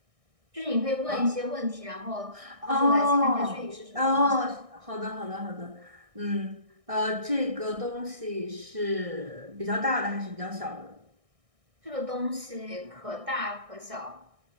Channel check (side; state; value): left; late; 1.6 ms